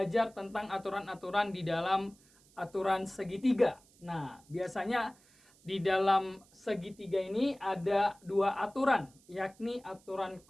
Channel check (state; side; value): noise; right; hiss, 29 dB below the sound